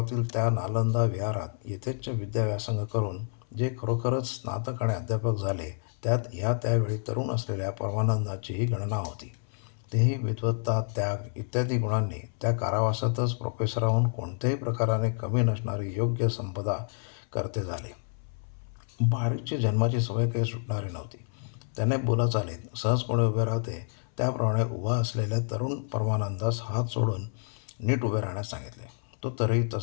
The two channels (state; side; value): silent; right; 59 dB below the other